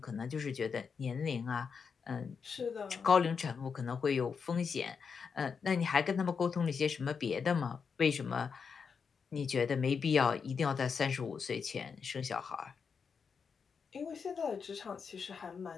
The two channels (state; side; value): quieter; right; 5.9 dB